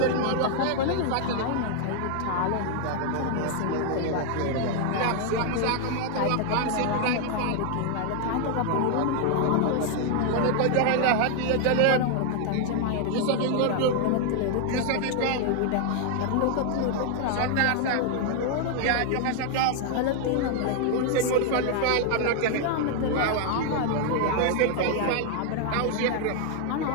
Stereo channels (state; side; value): different; both; correlation 0.00